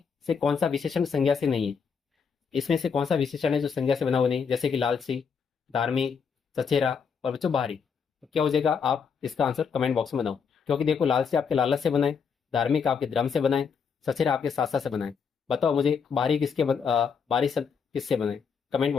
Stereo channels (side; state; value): right; quieter; 6.2 dB